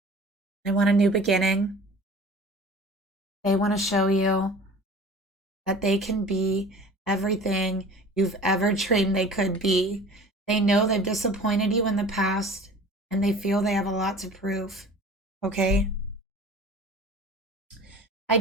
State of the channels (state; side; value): normal; both; correlation 0.43